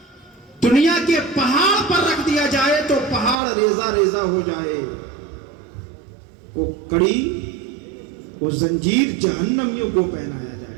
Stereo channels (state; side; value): drops out; left; at 3.4 s